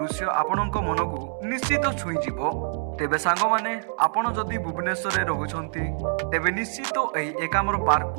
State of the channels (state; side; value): silent; left; 61 dB below the other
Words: ଆପଣଙ୍କ ମନକୁ ନିଶ୍ଚିତ ଛୁଇଁଯିବ। ତେବେ ସାଙ୍ଗମାନେ, ଆପଣ ଯଦି ଭୁବନେଶ୍ୱରରେ ରହୁଛନ୍ତି ତେବେ ନିଶ୍ଚିତ ଏହି ଏକାମ୍ର